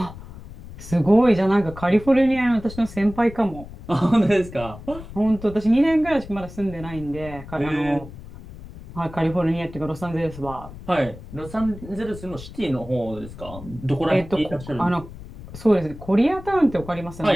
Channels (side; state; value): left; noise; rumble, 15 dB below the sound